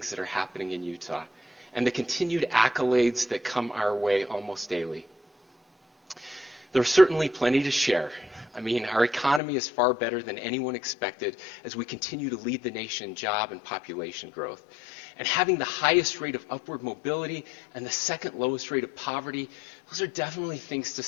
that are happening in Utah and the continued accolades that come our way almost daily. There's certainly plenty to share. I mean, our economy is far better than anyone expected as we continue to lead the nation in job and population growth. And having the highest rate of upward mobility and the second lowest rate of poverty, those are definitely things to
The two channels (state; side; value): drops out; right; at 9.4 s